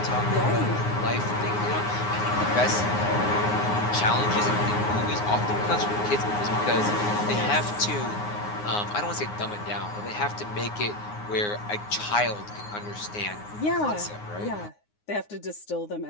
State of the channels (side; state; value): right; late; 9.6 ms